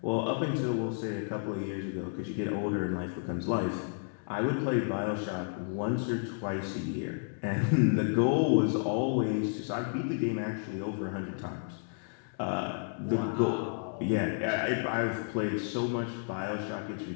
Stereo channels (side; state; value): right; silent; digital silence